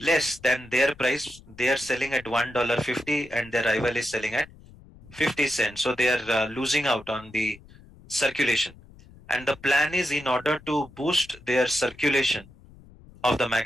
than their price. They are selling at $1.50 and their rival is selling at 50 cents. So they are losing out on the circulation. And the plan is in order to boost their circulation of the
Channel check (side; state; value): left; noise; rumble, 23 dB below the sound